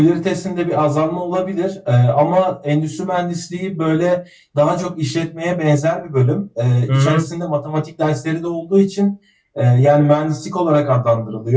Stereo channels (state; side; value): identical; both; correlation 1.00